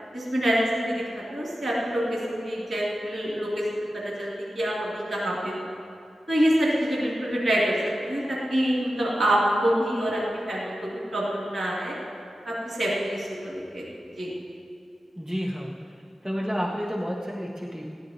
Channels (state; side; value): normal; both; correlation 0.92